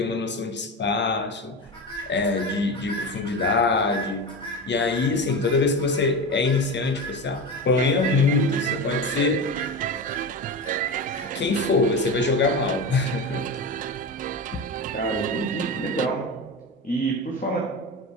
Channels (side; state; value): both; normal; correlation 0.24